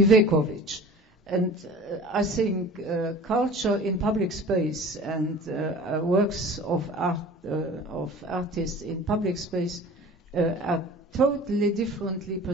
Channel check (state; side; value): normal; both; correlation 0.41